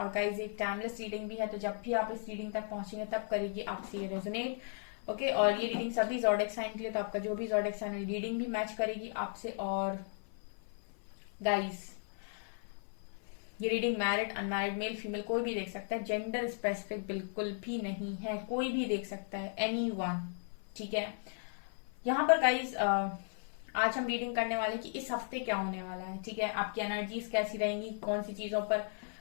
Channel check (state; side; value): silent; right; 54 dB below the other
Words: गाइस एक टाइमलेस रीडिंग भी है, तो जब भी आप इस रीडिंग तक पहुंचेंगे तब करेगी आपसे ये रेजोनेट। ओके और ये रीडिंग सभी ज़ोडिएक साइन के लिए, तो आपका जो भी ज़ोडिएक साइन रीडिंग भी मैच करेगी आपसे। और गाइस ये reading married unmarried male female कोई भी देख सकता है, जेंडर स्पेसिफिक बिल्कुल भी नहीं है, कोई भी देख सकता है, एनीवन। ठीक है, यहाँ पर गाइस आज हम रीडिंग करने वाले कि इस हफ्ते क्या होने वाला है। ठीक है, आपकी एनर्जीज कैसी रहेंगी, कौन सी चीजों पर